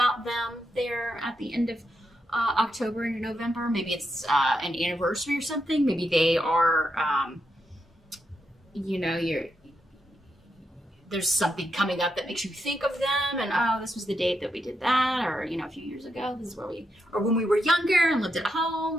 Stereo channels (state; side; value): normal; both; correlation 0.83